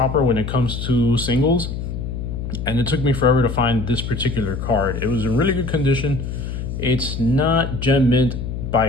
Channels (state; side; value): noise; left; hum, 5 dB below the sound